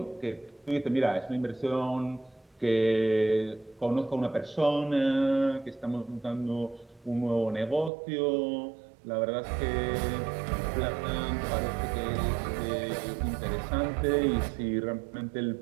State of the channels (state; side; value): drops out; left; at 7.9 s